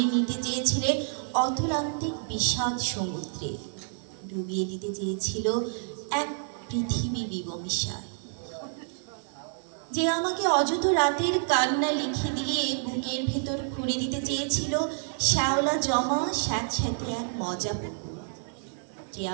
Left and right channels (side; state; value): left; silent; digital silence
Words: নিতে চেয়েছিলেন অতুলান্তিক বিষাদ সমুদ্রে, ডুবিয়ে দিতে চেয়েছিল এক পৃথিবী বিবমিশায়। যে আমাকে অযথ রাতের কান্না লিখে দিয়ে বুকের ভেতর খুঁড়ে দিতে চেয়েছিল শ্যাওলা জমা স্যাঁতস্যাঁতে এক মজা পুকুর। যে